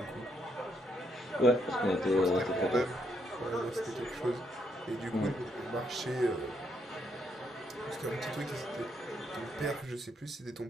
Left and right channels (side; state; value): both; normal; correlation 0.75